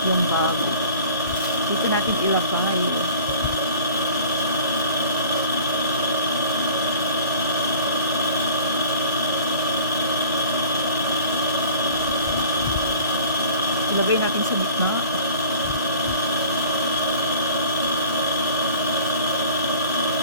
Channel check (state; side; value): inverted; both; correlation -0.47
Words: yung bag. Dito natin ilagay. Ilagay natin sa gitna.